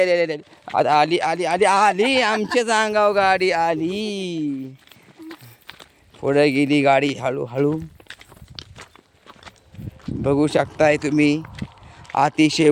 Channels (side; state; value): both; identical; correlation 1.00